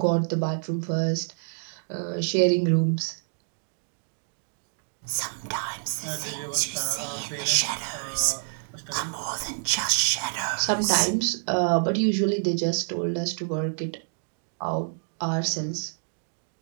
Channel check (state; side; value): silent; left; digital silence